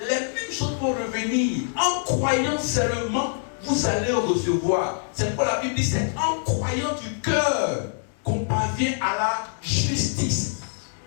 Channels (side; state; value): right; silent; 62 dB below the other